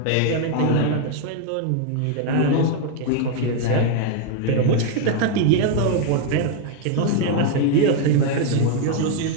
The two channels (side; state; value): both; different; correlation 0.01